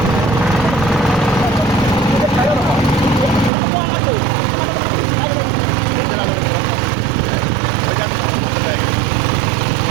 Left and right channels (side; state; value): left; drops out; at 3.5 s